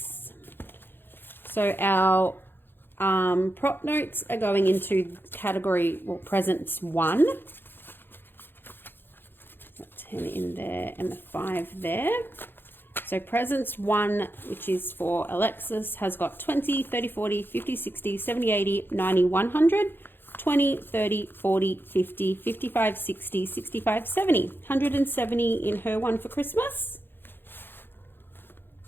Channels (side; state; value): right; late; 0.10 ms